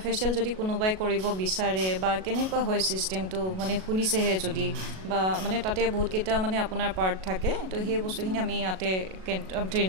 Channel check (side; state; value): left; late; 37 ms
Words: ফেচিয়েল যদি কোনোবাই কৰিব বিচাৰে বা কেনেকুৱা হয় ছিষ্টেমটো মানে শুনিছেহে যদি বা মানে তাতে বহুতকেইটা মানে আপোনাৰ পাৰ্ট থাকে তো সেই বস্তুখিনি আমি ইয়াতে